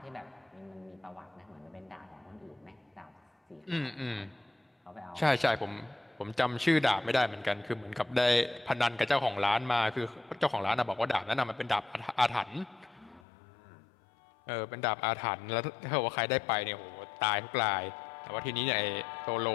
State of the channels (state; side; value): drops out; right; at 13.2 s